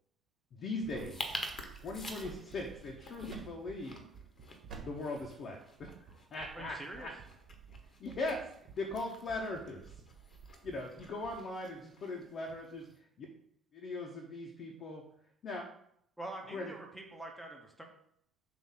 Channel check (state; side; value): normal; both; correlation 0.61